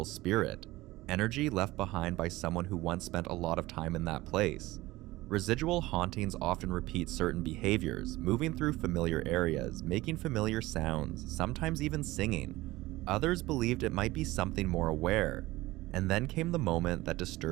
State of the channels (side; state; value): left; quieter; 18.7 dB